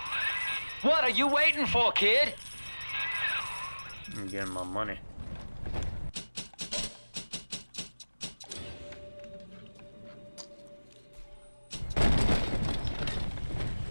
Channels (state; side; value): inverted; both; correlation -1.00